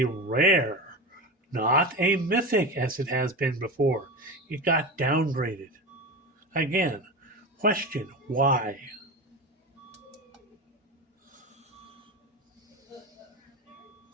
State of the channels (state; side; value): normal; both; correlation 0.24